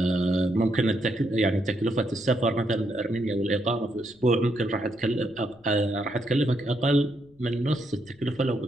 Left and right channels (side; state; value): left; noise; rumble, 30 dB below the sound